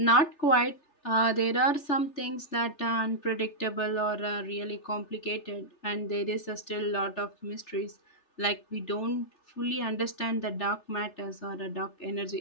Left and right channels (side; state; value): right; late; 3.3 ms